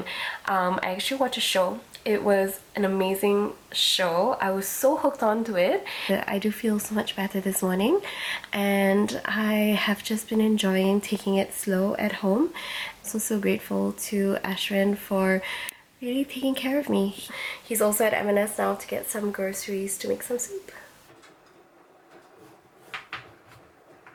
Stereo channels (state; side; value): identical; both; correlation 1.00